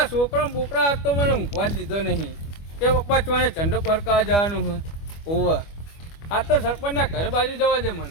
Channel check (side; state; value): right; late; 25 ms